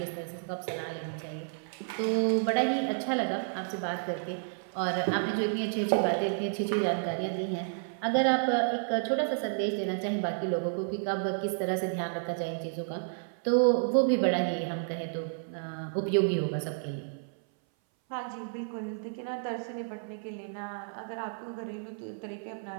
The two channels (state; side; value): silent; left; 57 dB below the other